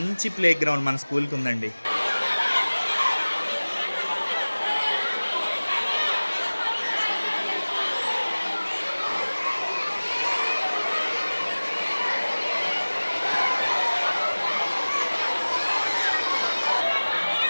ప్లే గ్రౌండ్ మన స్కూల్కి ఉందండి.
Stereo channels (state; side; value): inverted; both; correlation -1.00